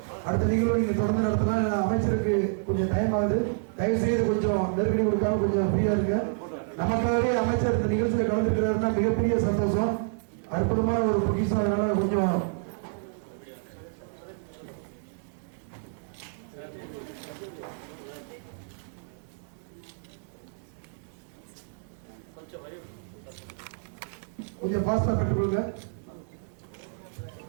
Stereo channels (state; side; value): silent; left; digital silence